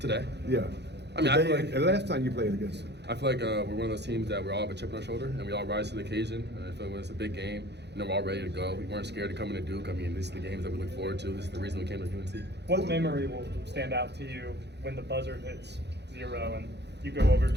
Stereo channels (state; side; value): late; left; 0.50 ms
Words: Yeah. I feel like the last time you played against them. I feel like we're one of those teams that we all have a chip on our shoulder and we all rise to the occasion. And I feel like when it's a big game, we're all ready to go. We weren't scared to come into Duke. These are the games that we look forward to. This is the reason we came to UNC. What memory will stand out to you when the buzzer hits 0 and you go over to